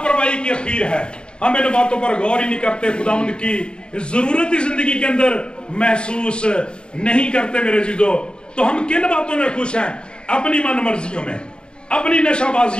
की अखीर है। हम इन बातों पर गौर ही नहीं करते, खुदावंद की जरूरत जिंदगी के अंदर महसूस नहीं करते मेरे जीजो। तो हम किन बातों में खुश हैं? अपनी मन मर्जियों में, अपनी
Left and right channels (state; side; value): late; right; 0.051 ms